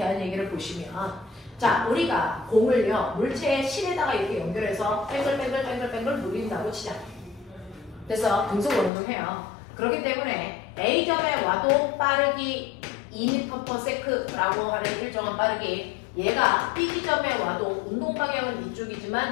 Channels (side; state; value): right; drops out; at 8.9 s